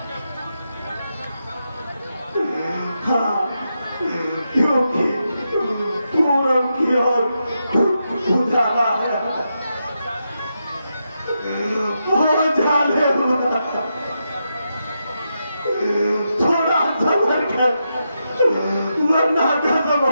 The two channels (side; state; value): both; inverted; correlation -0.85